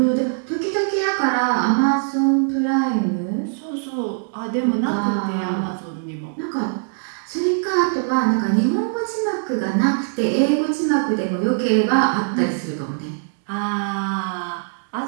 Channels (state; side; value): silent; left; digital silence